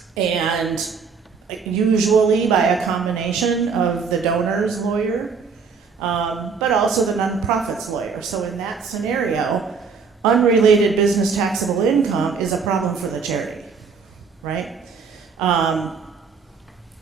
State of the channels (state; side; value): quieter; left; 5.5 dB